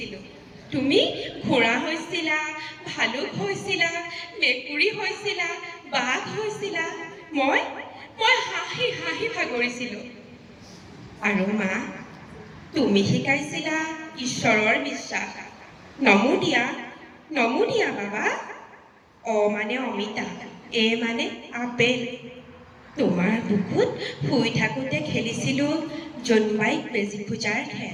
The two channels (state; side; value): identical; both; correlation 1.00